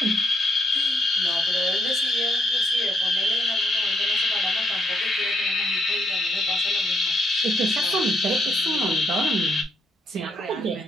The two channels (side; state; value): both; normal; correlation 0.75